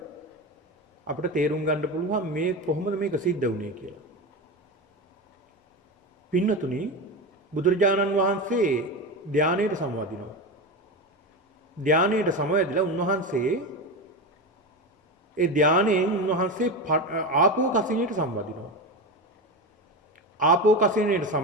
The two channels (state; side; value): normal; both; correlation 0.20